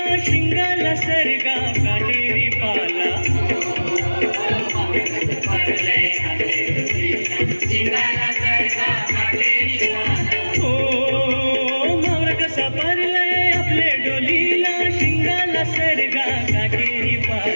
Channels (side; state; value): both; inverted; correlation -1.00